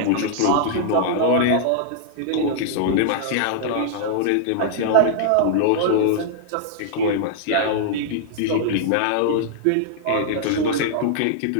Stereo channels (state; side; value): different; both; correlation -0.01